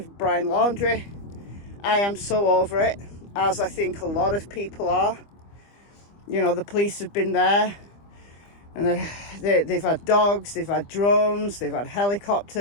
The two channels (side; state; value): right; late; 25 ms